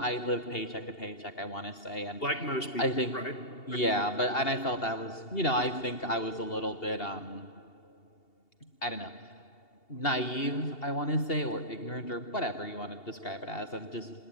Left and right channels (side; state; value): right; late; 2.8 ms